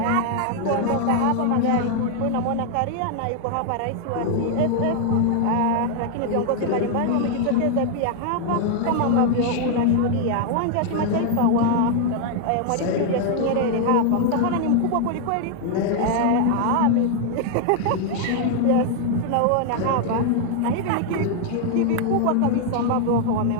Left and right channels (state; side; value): different; both; correlation 0.00